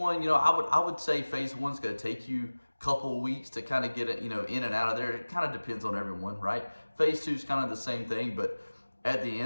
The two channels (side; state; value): both; inverted; correlation -1.00